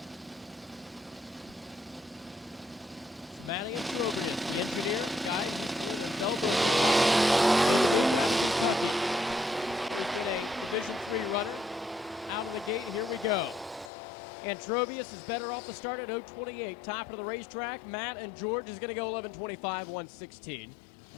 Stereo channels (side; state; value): right; drops out; at 13.9 s